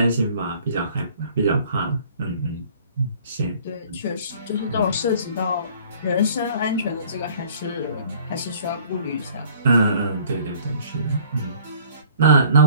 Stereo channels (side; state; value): both; inverted; correlation -0.54